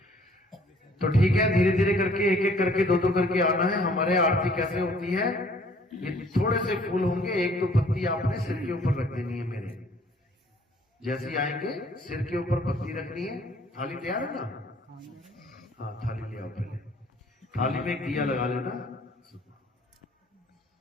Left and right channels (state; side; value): normal; both; correlation 0.58